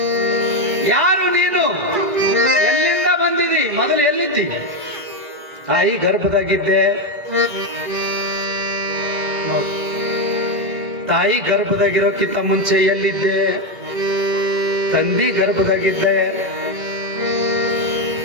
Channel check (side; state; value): left; late; 1.6 ms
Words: ಯಾರು ನೀನು? ಎಲ್ಲಿಂದ ಬಂದಿದಿ? ಮೊದಲು ಎಲ್ಲಿದ್ದಿ? ತಾಯಿ ಗರ್ಭದಾಗಿದ್ದೆ ನೋಡಿ. ತಾಯಿ ಗರ್ಭದಾಗಿರೋಕ್ಕಿಂತ ಮುಂಚೆ ಎಲ್ಲಿದ್ದೆ? ತಂದಿ ಗರ್ಭದಾಗಿದ್ದೆ.